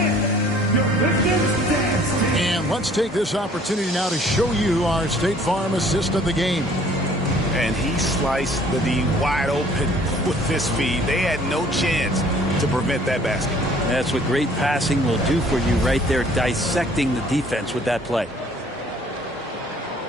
Let's take this opportunity now to show you our State Farm assist of the game. And he sliced the D wide open with this feed. They had no chance to prevent that basket. That's what great passing will do for you right there, dissecting the defense with that play.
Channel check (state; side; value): normal; both; correlation 0.56